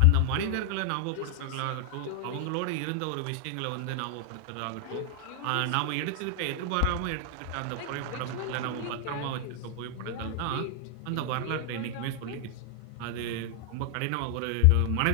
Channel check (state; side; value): different; both; correlation 0.00